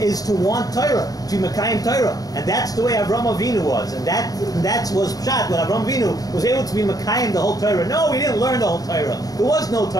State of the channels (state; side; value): late; right; 0.18 ms